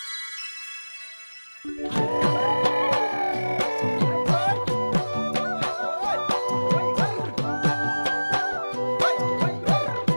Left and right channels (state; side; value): inverted; both; correlation -1.00